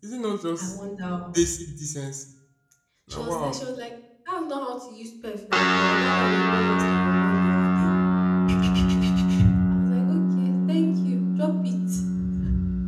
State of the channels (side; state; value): both; identical; correlation 1.00